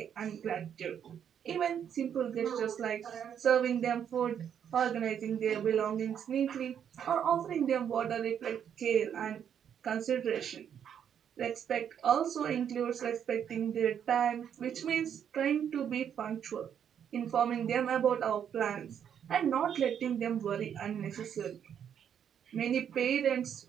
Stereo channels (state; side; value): quieter; left; 8.6 dB